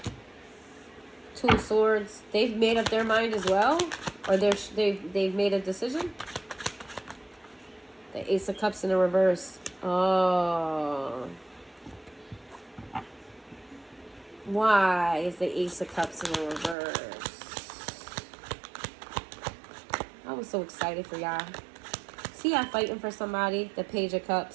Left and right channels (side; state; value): left; drops out; at 16.8 s